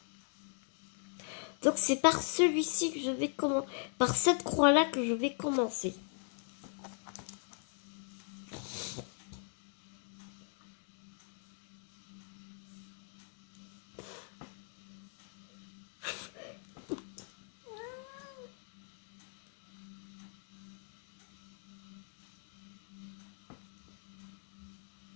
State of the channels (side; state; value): right; silent; 52 dB below the other